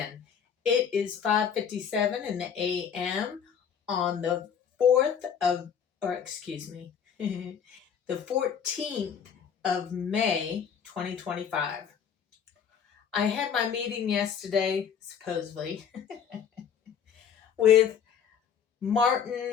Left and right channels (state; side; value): quieter; right; 7.6 dB